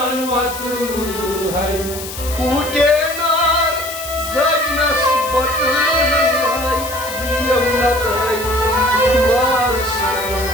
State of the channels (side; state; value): left; noise; hiss, 10 dB below the sound